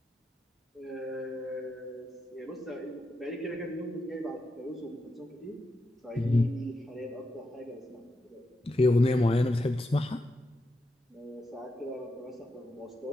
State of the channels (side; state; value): both; normal; correlation 0.85